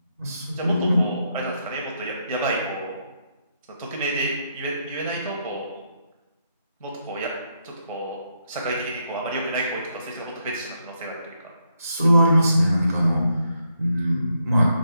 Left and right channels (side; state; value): both; inverted; correlation -0.78